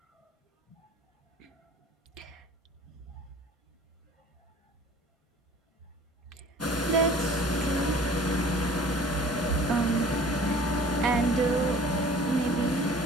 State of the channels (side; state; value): both; normal; correlation 0.47